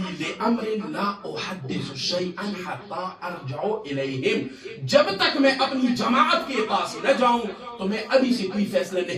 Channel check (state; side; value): identical; both; correlation 1.00